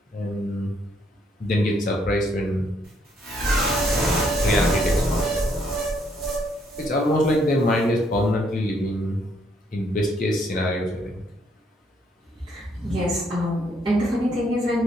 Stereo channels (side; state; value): both; normal; correlation 0.70